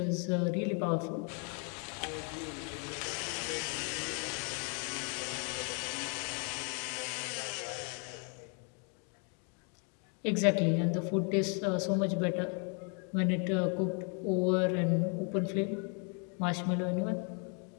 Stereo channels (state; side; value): quieter; right; 39.2 dB